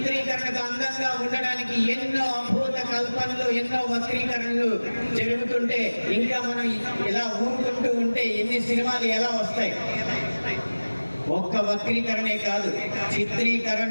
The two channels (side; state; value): both; inverted; correlation -1.00